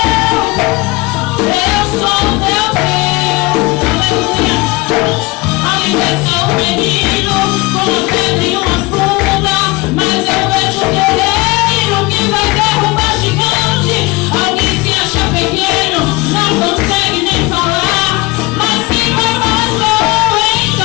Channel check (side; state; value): right; quieter; 23.3 dB